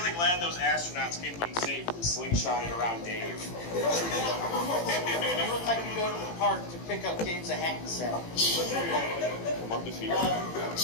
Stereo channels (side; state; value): right; late; 18 ms